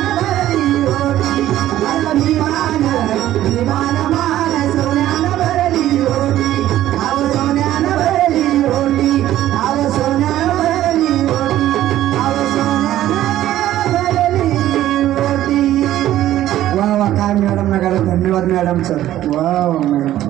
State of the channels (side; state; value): left; quieter; 13.3 dB